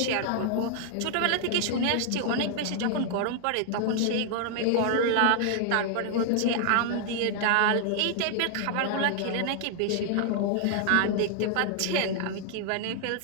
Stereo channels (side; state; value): both; different; correlation 0.00